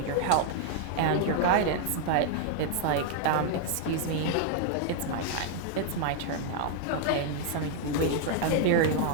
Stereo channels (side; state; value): both; different; correlation 0.00